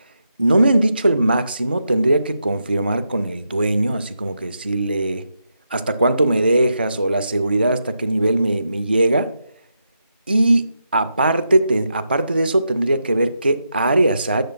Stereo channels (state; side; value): inverted; both; correlation -0.84